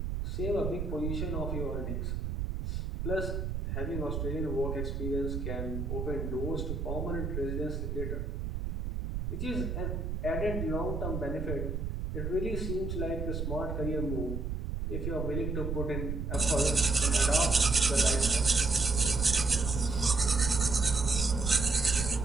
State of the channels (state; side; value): noise; right; rumble, 3 dB below the sound